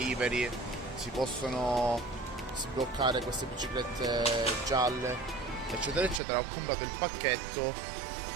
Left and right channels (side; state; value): left; drops out; at 6.2 s